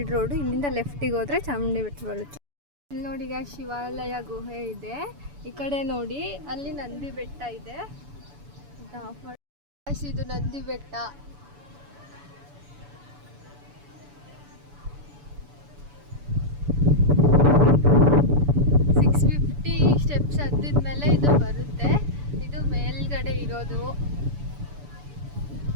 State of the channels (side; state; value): left; late; 7.0 ms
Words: ರೋಡು. ಇಲ್ಲಿಂದ ಲೆಫ್ಟಿಗೆ ಹೋದರೆ ಚಾಮುಂಡಿ ಬೆಟ್ಟ ಬರುತ್ತೆ. ಇಲ್ಲಿ ನೋಡಿ ಈಗ ಶಿವಾಲಯ ಗುಹೆ ಇದೆ. ಈ ಕಡೆ ನೋಡಿ ಅಲ್ಲಿ ನಂದಿ ಬೆಟ್ಟ ಇದೆ. ಇದು ನಂದಿ ಬೆಟ್ಟ. ಸ್ಟೆಪ್ಸ್ ಹತ್ತಿದ್ಮೇಲೆ ಇದು ಬರುತ್ತೆ. ಇದು ಮೇಲ್ಗಡೆ ಇರೋದು.